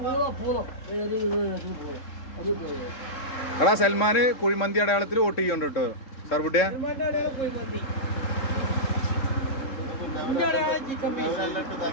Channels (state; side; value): late; right; 3.7 ms